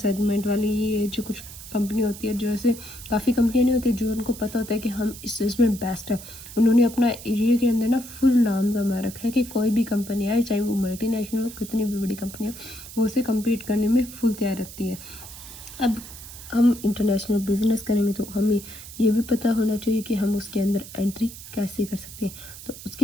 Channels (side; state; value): right; noise; hiss, 14 dB below the sound